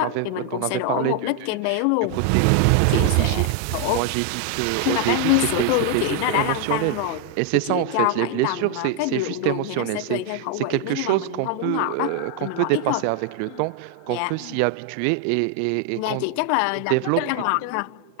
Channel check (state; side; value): different; both; correlation 0.01